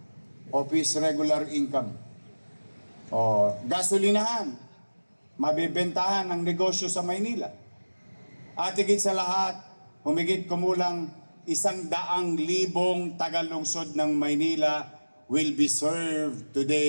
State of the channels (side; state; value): both; inverted; correlation -1.00